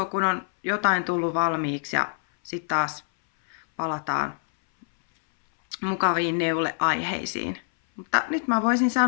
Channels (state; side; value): silent; right; 61 dB below the other